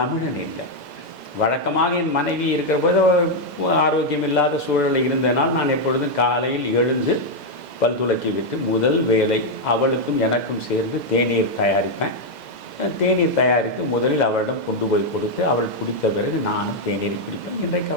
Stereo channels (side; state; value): right; late; 2.0 ms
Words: இல்லை. வழக்கமாக என் மனைவி இருக்கிற போது ஆரோக்கியம் இல்லாத சூழலில் இருந்தனால் நான் எப்பொழுதும் காலையில் எழுந்து பல் துலக்கி விட்டு முதல் வேலை அவளுக்கும் எனக்கும் சேர்ந்து தேநீர் தயாரிப்பேன். தேநீர் தயாரித்து முதலில் அவளிடம் கொண்டு போய் கொடுத்து அவள் குடித்த பிறகு நானும் தேநீரை குடிப்பேன். இன்றைக்கு